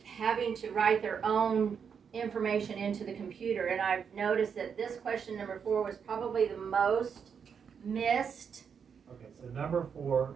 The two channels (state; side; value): quieter; left; 6.9 dB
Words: having to write their own information into the computer. And I've noticed that this question number 4 was probably the most missed. Okay, so number 4